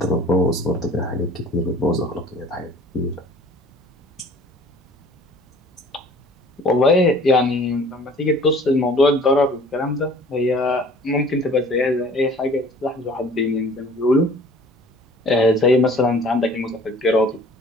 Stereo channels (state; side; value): normal; both; correlation 0.50